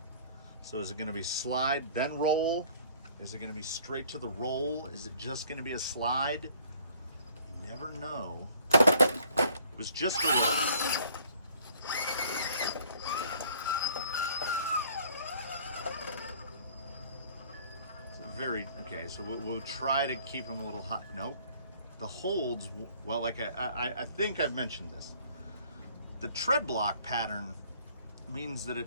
so is it going to be slide then roll? Is it going to be straight to the roll? Is it just going to be a slide? You never know. It was just a roll. Okay, so we'll try to keep them a little hot. Nope. The holds, well, like I think I've mentioned this. The tread block pattern means that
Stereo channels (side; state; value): both; inverted; correlation -0.57